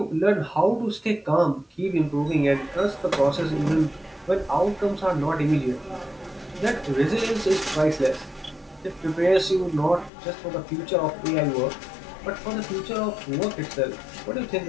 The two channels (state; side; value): drops out; right; at 10.1 s